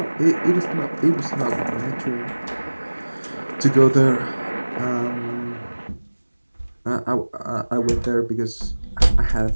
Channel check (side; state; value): both; inverted; correlation -1.00